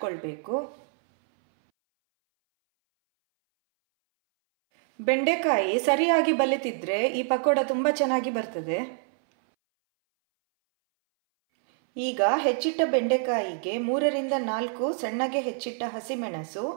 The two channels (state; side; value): silent; left; 61 dB below the other